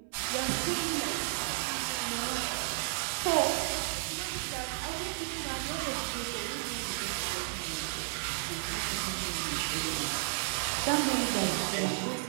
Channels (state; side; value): silent; left; 56 dB below the other